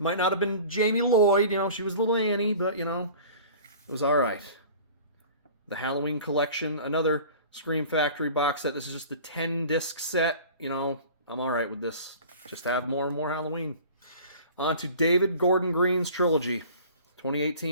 might not have been Jamie Lloyd, you know, she was little Annie, but, you know, it was alright. The Halloween Collection, another Scream Factory box set. This is just the 10-disc set. You know, I'm alright with this. Just have more and more Halloween. On to David Gordon Green's trilogy.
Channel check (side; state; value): both; inverted; correlation -0.43